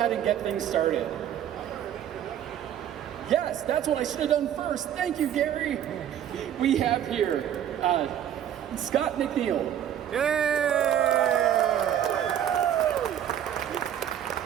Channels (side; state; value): left; quieter; 10.2 dB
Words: and get things started. Yes, that's what I should have done first. Thank you, Garry. We have here Scott McNeil. Yeah!